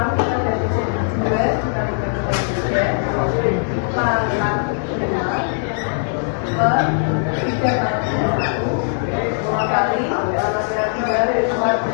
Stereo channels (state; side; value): silent; right; 64 dB below the other